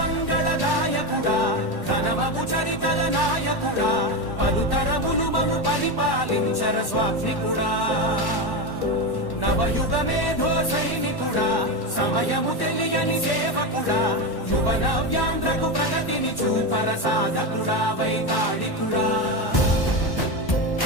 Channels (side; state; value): right; late; 1.1 ms